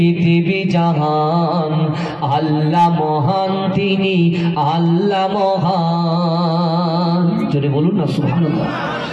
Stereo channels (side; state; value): both; identical; correlation 1.00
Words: জাহান, আল্লাহ মহান তিনি আল্লাহ মহান। জোরে বলুন না সুবহানাল্লাহ।